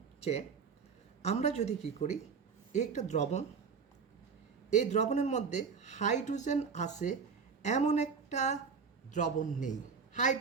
যে আমরা যদি কি করি, একটা দ্রবণ, এই দ্রবণের মধ্যে হাইড্রোজেন আছে এমন একটা দ্রবণ নেই,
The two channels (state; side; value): quieter; left; 5.7 dB